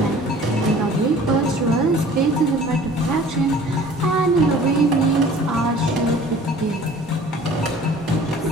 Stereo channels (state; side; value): normal; both; correlation 0.48